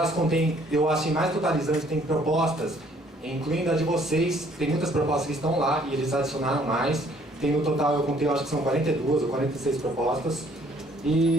contém, eu acho mais totalizante, tem propostas, incluindo a de vocês, tem muitas propostas que estão lá e eles adicionaram mais. tem no total, eu contei, eu acho que são 42 ou 46 propostas.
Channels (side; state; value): both; normal; correlation 0.61